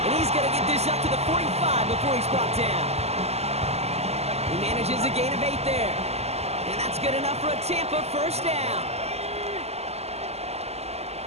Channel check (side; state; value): left; late; 0.30 ms